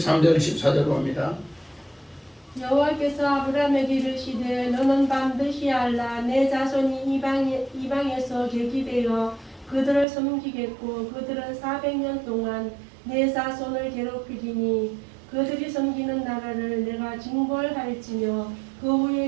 14절 봅니다. 여호와께서 아브라함에게 이르시되 너는 반드시 알라 내 자손이 이방에서 계기되어 그들을 섬기겠고 그들은 400년 동안 내 자손을 괴롭히리니 그들이 섬기는 나라를 내가 징벌할지며 그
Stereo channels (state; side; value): drops out; left; at 10.1 s